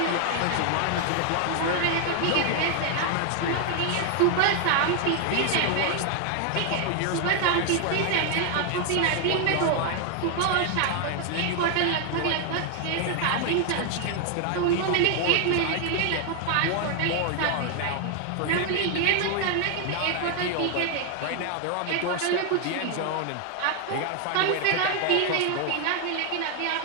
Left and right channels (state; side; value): different; both; correlation 0.00